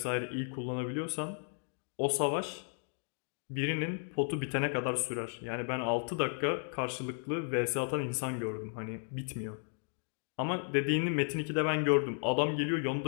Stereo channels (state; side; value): silent; right; 55 dB below the other